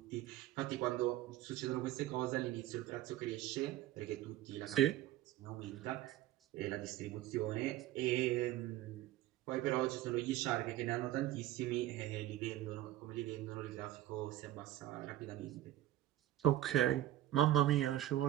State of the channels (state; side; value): quieter; left; 14.3 dB